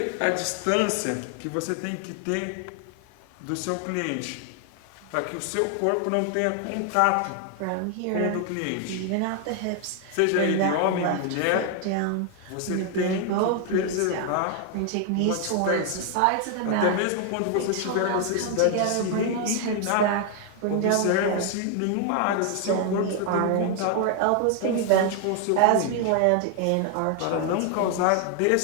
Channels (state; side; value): different; both; correlation 0.00